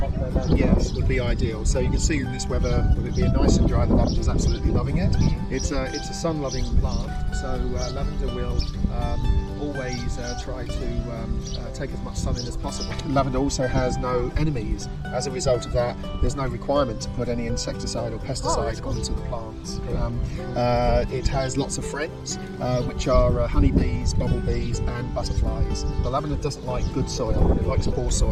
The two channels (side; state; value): both; identical; correlation 1.00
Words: weather. Yes, would be ideal. So you can see in this weather, with it being nice and dry, the lavender is absolutely loving it. It's a sun-loving plant, so lavender will always try to take as much sun in as possible. Lavender also has no enemies. As a result of that, there's no requirement to put any insecticide or pesticide onto the plants. It has lots of friends, which are honeybees, bumblebees and butterflies. The lavender doesn't like good soil, it likes poor